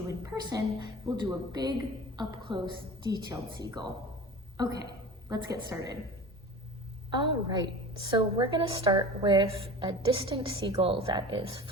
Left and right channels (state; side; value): normal; both; correlation 0.35